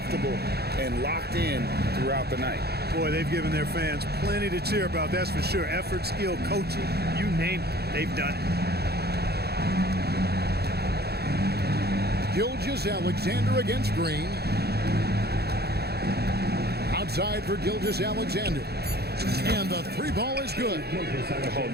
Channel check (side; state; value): left; late; 0.47 ms